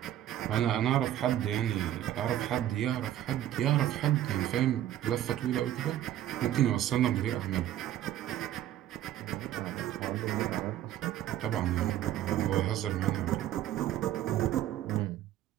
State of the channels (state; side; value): quieter; left; 12.4 dB